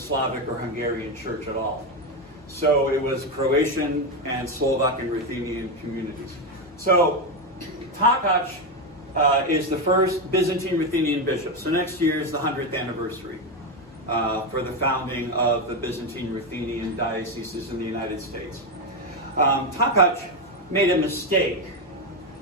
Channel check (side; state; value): both; normal; correlation 0.10